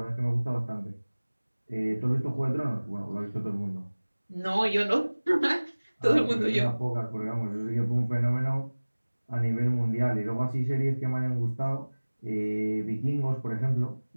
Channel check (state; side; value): inverted; both; correlation -1.00